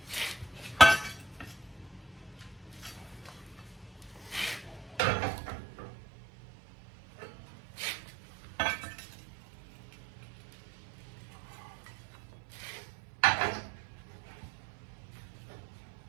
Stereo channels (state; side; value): drops out; left; at 5.0 s